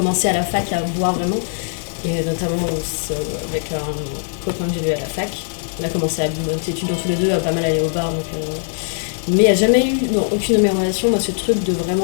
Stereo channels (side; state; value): right; silent; 55 dB below the other